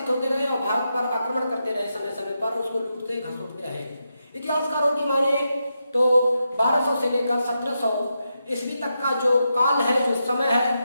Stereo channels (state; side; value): inverted; both; correlation -0.86